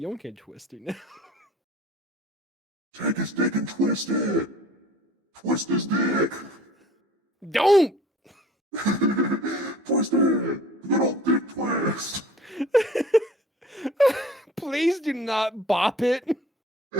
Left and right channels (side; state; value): both; normal; correlation 0.47